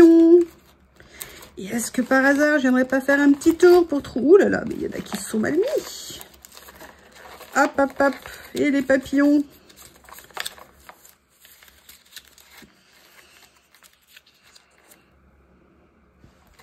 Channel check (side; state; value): both; identical; correlation 1.00